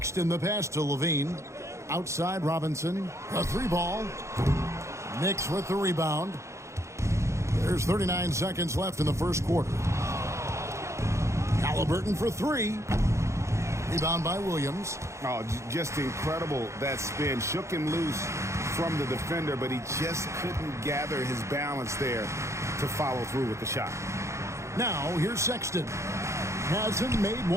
the pass to Levine. Outside, Robinson. A three ball. Knicks with the rebound. There's 39 seconds left in the first quarter. Halliburton for three. Rebound by Williams. Oh, just incredible. That spin shook him loose from the defender, but he just couldn't gather his balance there to follow through with the shot. Now, here's Sexton. Hasn't made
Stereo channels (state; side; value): late; left; 0.14 ms